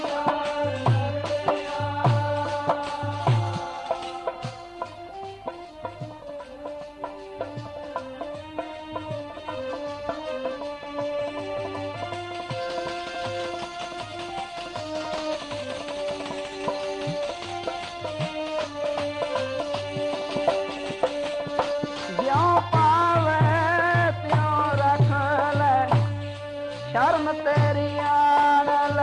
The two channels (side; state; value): both; identical; correlation 1.00